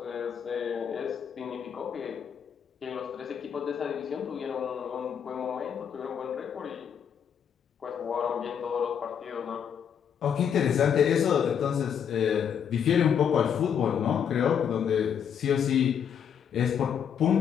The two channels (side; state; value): right; quieter; 8.0 dB